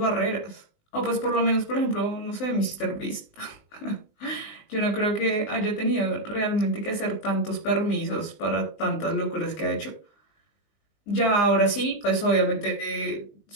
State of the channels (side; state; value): right; late; 20 ms